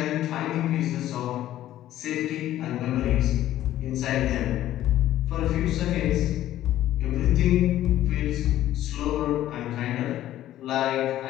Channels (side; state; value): right; quieter; 13.3 dB